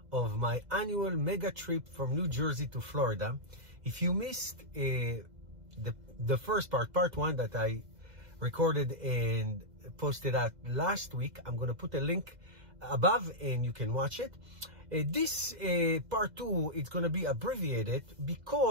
of my annual mega trip from New Jersey to Florida. If you missed the first part 1 that I recorded and posted out last week, I'm going to put a link above and you can watch it. This part 2 is going to be abbreviated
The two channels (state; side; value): late; left; 2.0 ms